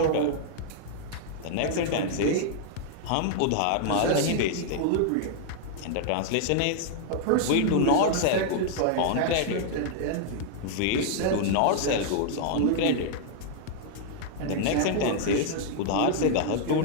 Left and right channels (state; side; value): different; both; correlation -0.01